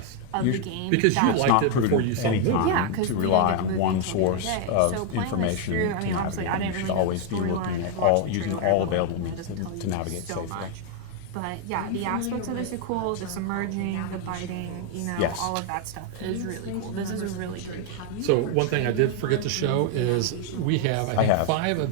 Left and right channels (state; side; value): different; both; correlation 0.00